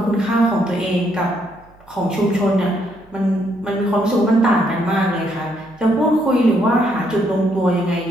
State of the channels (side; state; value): right; noise; hum, 28 dB below the sound